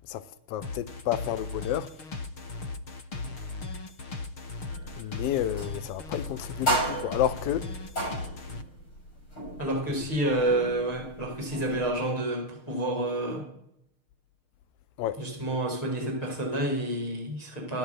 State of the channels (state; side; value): late; right; 6.5 ms